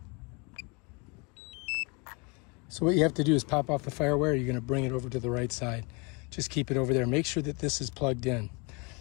So what you have to do is pop off the fire wire. You're going to bring it over to the right side. Just keep it over there. Make sure that this is plugged in.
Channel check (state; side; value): quieter; right; 30.5 dB